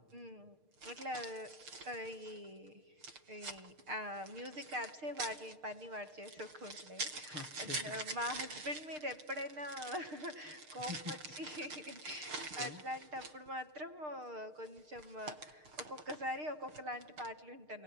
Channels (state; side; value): late; left; 6.6 ms